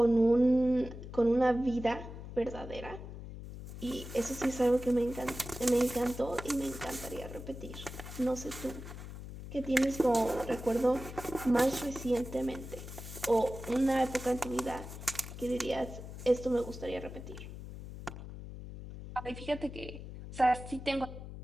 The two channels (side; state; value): left; noise; hum, 11 dB below the sound